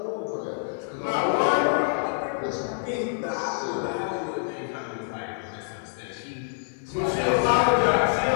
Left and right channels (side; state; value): right; silent; digital silence